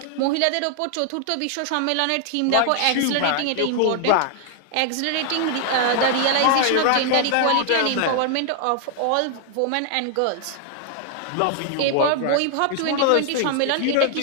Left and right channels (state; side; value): different; both; correlation 0.00